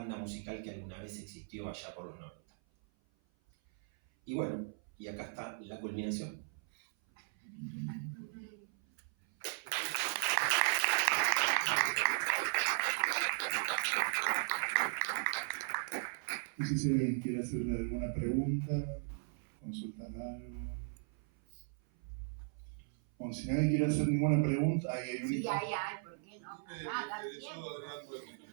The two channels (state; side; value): silent; left; 53 dB below the other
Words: musical que alguna vez existió allá por los 90. Y bueno, y acá está la culminación. No sé si alguien quiere hacerle alguna pregunta, consultar algo. Bueno, si nadie quiere hacer ninguna pregunta, ahí hay un... Sí, hay, ¿por qué no? Me Nada, interesó, tiempo. Adrián, por tus